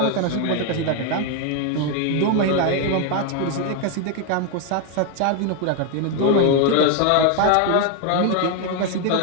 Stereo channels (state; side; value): different; both; correlation 0.01